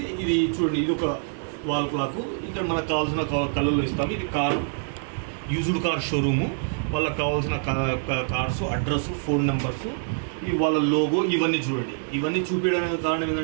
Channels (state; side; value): silent; left; 61 dB below the other